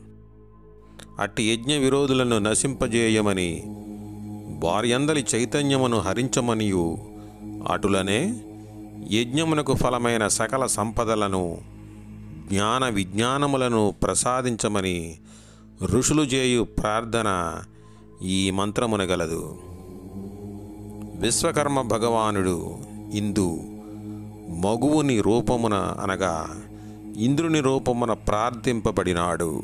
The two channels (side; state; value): both; identical; correlation 1.00